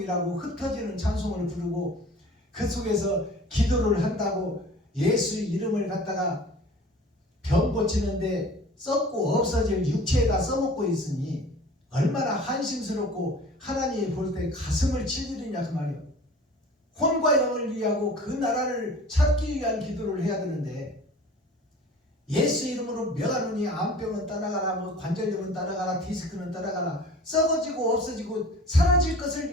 흩어지는 찬송을 부르고 그 속에서 기도를 한다고 예수 이름을 갖다가 병 고치는데 썩고 없어질 육체에다 써먹고 있으니 얼마나 한심스럽고 하나님이 볼 때 가슴을 칠 일이냐 그 말이에요. 혼과 영을 위하고 그 나라를 찾기 위한 기도를 해야 되는데 예수 이름으로 명하노니 암병은 떠나가라, 뭐 관절염은 떠나가라, 디스크는 떠나가라, 썩어지고 없어지고 사라질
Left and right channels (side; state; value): both; normal; correlation 0.44